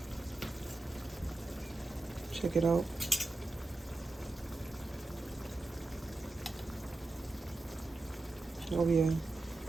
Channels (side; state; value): left; quieter; 3.1 dB